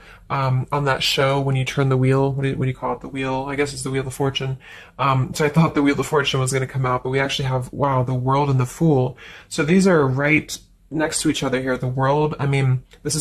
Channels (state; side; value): identical; both; correlation 1.00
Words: on that show when you turn the wheel, what do you call it? The wheel, I guess it's the Wheel of Fortune. So I thought the Wheel of Fortune was going to come out, but we actually have, wow, the World and the Fool. So these are right next to each other here. The World, I mean, this